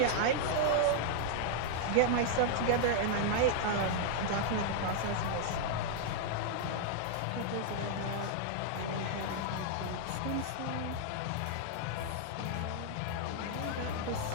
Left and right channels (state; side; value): different; both; correlation -0.01